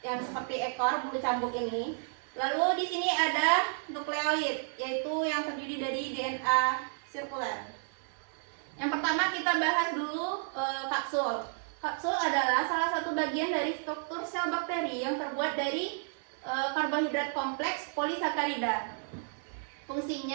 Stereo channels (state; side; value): silent; left; digital silence